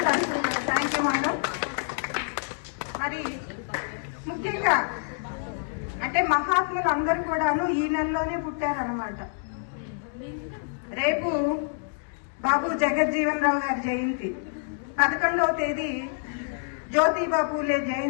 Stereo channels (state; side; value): silent; right; digital silence